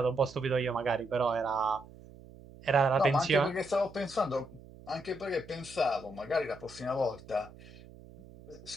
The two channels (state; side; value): noise; right; hum, 19 dB below the sound